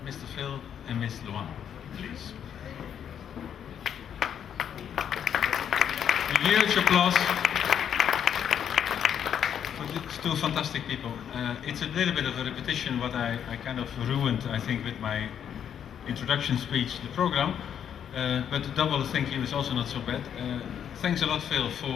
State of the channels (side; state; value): right; quieter; 8.8 dB